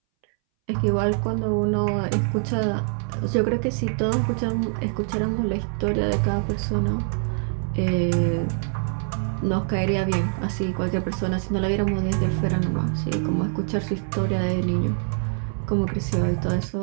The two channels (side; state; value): left; silent; 61 dB below the other